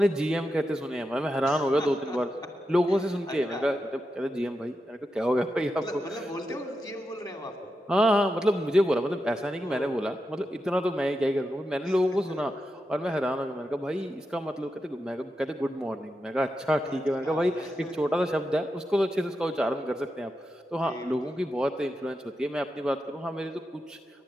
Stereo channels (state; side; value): normal; both; correlation 0.88